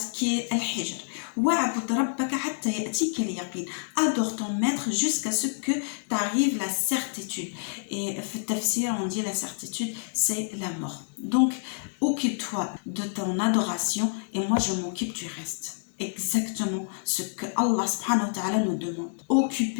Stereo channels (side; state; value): right; silent; digital silence